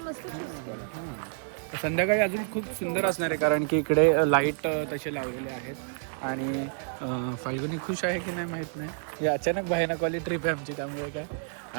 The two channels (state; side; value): silent; left; digital silence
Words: मस्त हां. संध्याकाळी अजून खूप सुंदर असणार आहे कारण की इकडे लाईट तसे लावलेले आहेत. आणि फाल्गुनी खुश आहे की नाही माहीत नाही. ही अचानक भयानकवाली ट्रिप आहे आमची त्यामुळे काय.